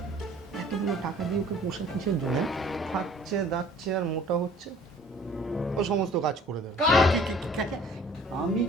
এতগুলো টাকা দিয়ে ওকে পোষা কিসের জন্য? খাচ্ছে দাচ্ছে আর মোটা হচ্ছে, ও সমস্ত কাজ করে দেবে। আমি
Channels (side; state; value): both; normal; correlation 0.52